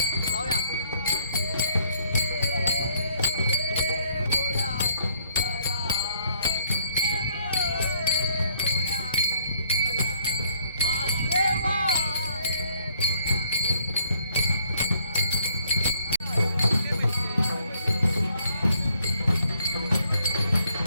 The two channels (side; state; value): both; inverted; correlation -0.66